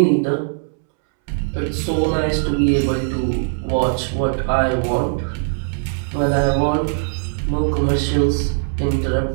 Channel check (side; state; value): left; silent; 65 dB below the other